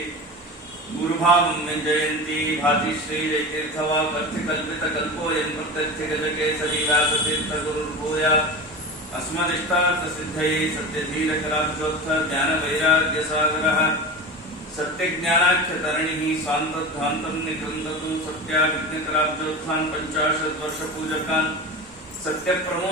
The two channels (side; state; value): both; normal; correlation 0.28